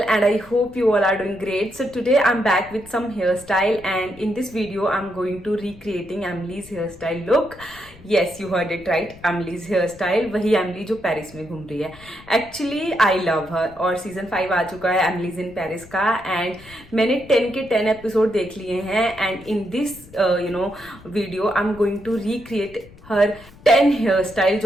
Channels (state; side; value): noise; left; rumble, 22 dB below the sound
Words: and I hope you all are doing great. So today I'm back with some hairstyle and in this video I'm going to recreating Emily's hairstyle look. Yes, you heard it right, Emily's hairstyle. वही Emily जो पेरिस में घूम रही है. Actually I love her और सीजन 5 आ चुका है Emily's in Paris का and मैंने 10 के 10 एपिसोड देख लिए हैं and in this video I'm going to recreate her 10 hair style